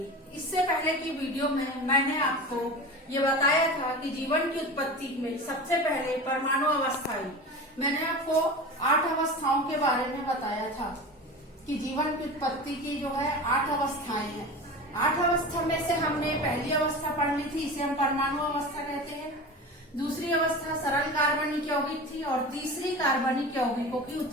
इससे पहले की वीडियो में मैंने आपको ये बताया था कि जीवन की उत्पत्ति में सबसे पहले परमाणु अवस्था आई। मैंने आपको 8 अवस्थाओं के बारे में बताया था कि जीवन की उत्पत्ति की जो है 8 अवस्थाएं हैं। 8 अवस्था में से हमने पहली अवस्था पढ़ ली थी, इसे हम परमाणु अवस्था कहते हैं। दूसरी अवस्था सरल कार्बनिक यौगिक थी और तीसरी कार्बनिक यौगिकों की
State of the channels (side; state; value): both; normal; correlation 0.31